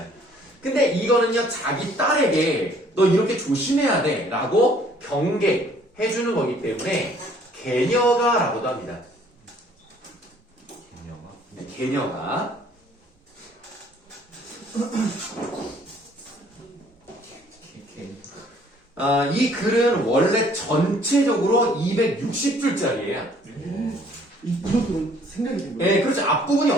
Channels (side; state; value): both; normal; correlation 0.59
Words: 근데 이거는요 자기 딸에게 너 이렇게 조심해야 돼 라고 경계해주는 거기 때문에 개녀가라고도 합니다. 개념아? 네, 개녀가 이 글은 원래 전체적으로 260줄짜리예요. 이것도 생각이 든 거예요. 네, 그렇죠. 앞부분이